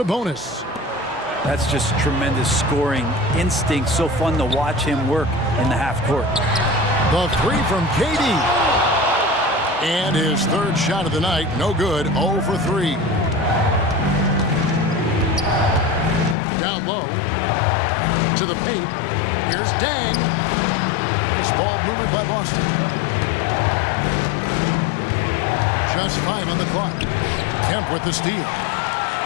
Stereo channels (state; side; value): drops out; right; at 16.4 s